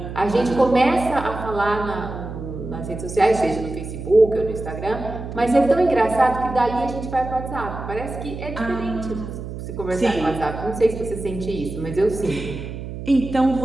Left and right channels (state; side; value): noise; right; hum, 9 dB below the sound